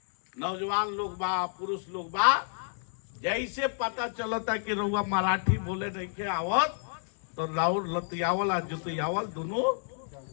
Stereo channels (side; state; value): right; silent; 58 dB below the other